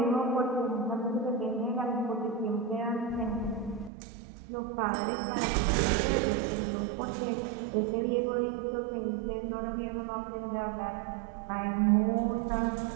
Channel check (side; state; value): left; drops out; at 3.9 s